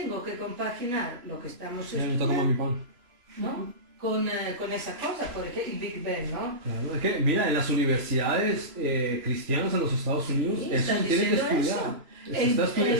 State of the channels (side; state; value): left; late; 3.0 ms